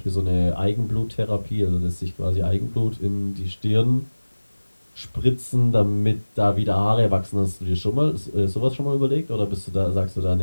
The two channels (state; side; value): inverted; both; correlation -1.00